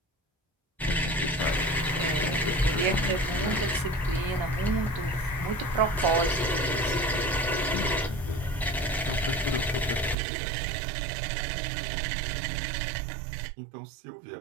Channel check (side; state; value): left; drops out; at 10.2 s